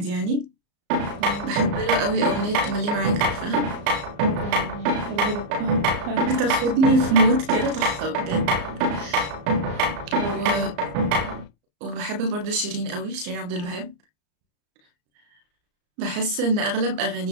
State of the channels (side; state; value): left; late; 34 ms